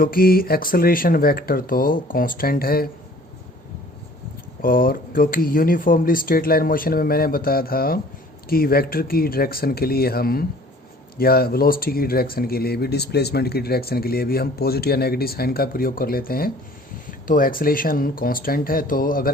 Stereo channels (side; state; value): both; normal; correlation 0.52